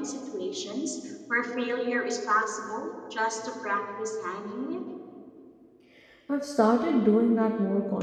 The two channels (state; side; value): identical; both; correlation 1.00